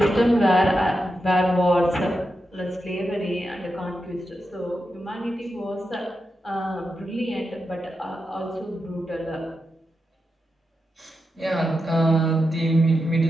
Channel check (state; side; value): normal; both; correlation 0.88